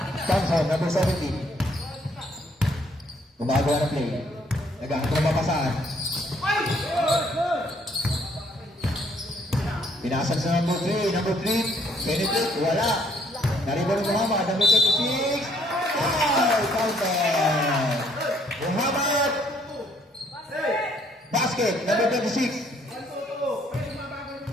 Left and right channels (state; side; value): normal; both; correlation 0.66